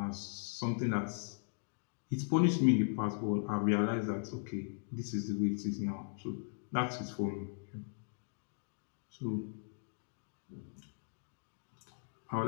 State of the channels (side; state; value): right; silent; digital silence